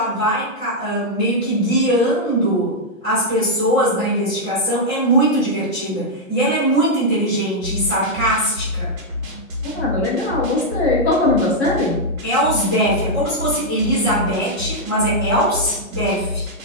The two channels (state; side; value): normal; both; correlation -0.03